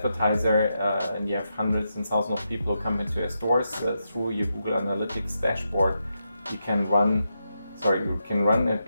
and you have hundreds and thousands of people who come into your stores through your Google Analytics dashboard, you can run a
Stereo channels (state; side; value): inverted; both; correlation -0.85